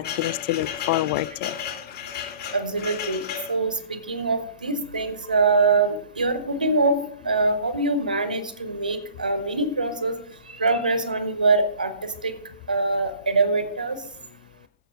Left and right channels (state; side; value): inverted; both; correlation -0.52